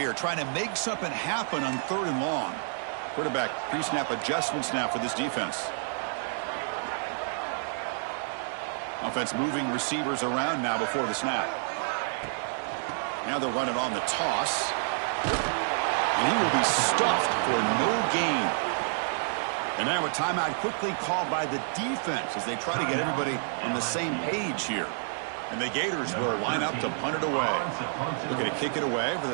trying to make something happen on 3rd and long. Quarterback pre-snap adjustments now for this defense. Offense moving receivers around now before the snap. Now they'll run it on the toss. And he will be stuffed for no gain. And now a timeout quickly called by the defense as they try to get everybody on the same page here. And the Gators will line up to punt it away. Looking to kick it away for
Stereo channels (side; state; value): left; silent; digital silence